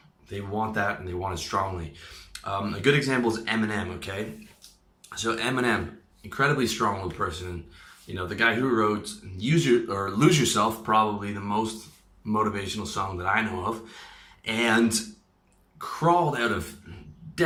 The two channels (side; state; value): both; identical; correlation 1.00